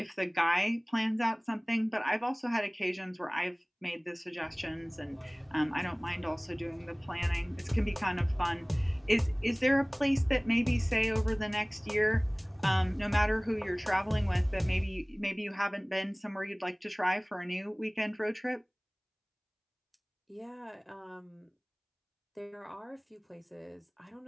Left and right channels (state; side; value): identical; both; correlation 1.00